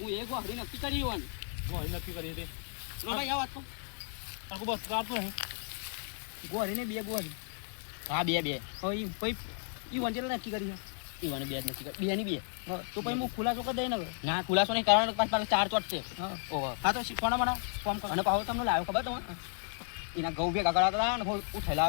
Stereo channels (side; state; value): right; silent; 55 dB below the other